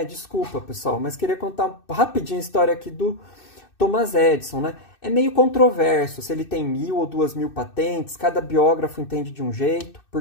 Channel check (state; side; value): late; right; 2.6 ms